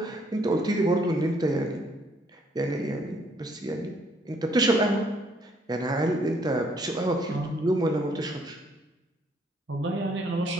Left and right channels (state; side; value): normal; both; correlation 0.66